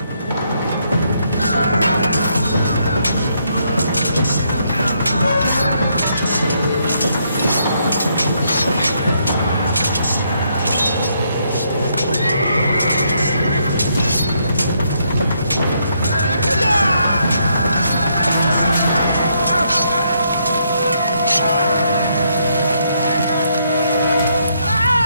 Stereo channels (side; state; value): both; inverted; correlation -0.74